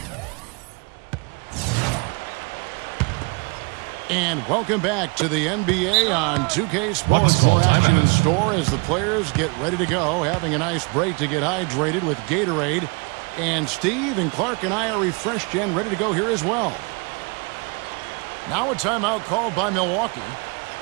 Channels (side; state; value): left; quieter; 30.8 dB